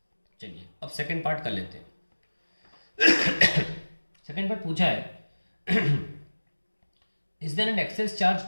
चलिए अब सेकेंड पार्ट कर लेते हैं. सेकेंड पार्ट पूछा है is there an excess charge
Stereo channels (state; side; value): inverted; both; correlation -1.00